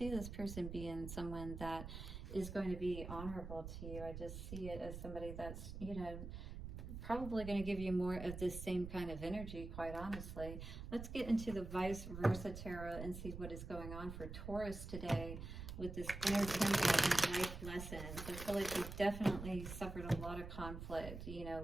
this person being someone that is going to be honorable to you. I just see it as somebody that's, you know, probably going to give you more of this same kind of energy, quite honestly. Let's get into the vice versa tarot and see what is going on for Taurus today with this inner temple and life lessons. I feel like you've definitely suffered a lot of conflict, you know,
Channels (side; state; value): right; noise; rumble, 8 dB below the sound